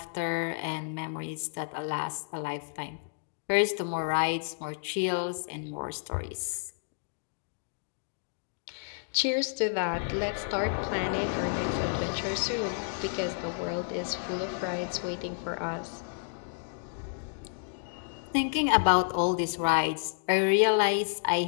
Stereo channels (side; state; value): right; silent; digital silence